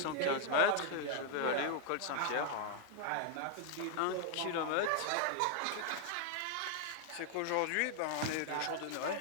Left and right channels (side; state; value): both; different; correlation 0.00